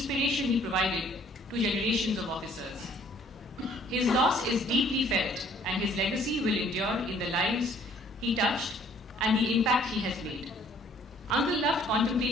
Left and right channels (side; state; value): both; normal; correlation 0.59